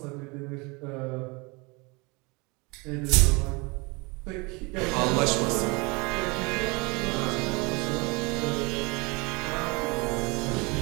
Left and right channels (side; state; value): left; quieter; 27.7 dB